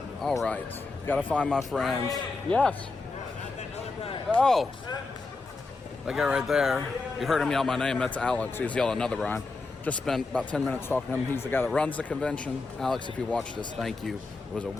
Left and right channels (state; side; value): quieter; right; 3.7 dB